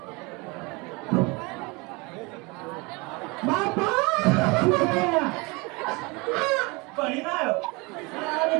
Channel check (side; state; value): left; quieter; 26.8 dB